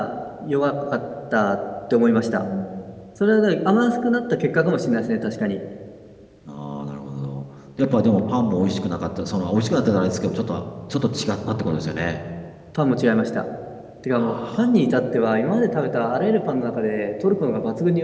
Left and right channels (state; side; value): identical; both; correlation 1.00